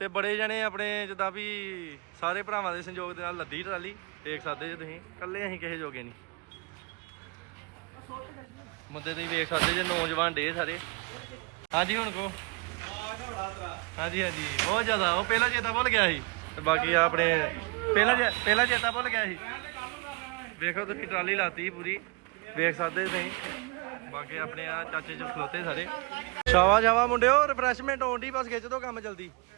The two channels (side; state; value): left; quieter; 28.4 dB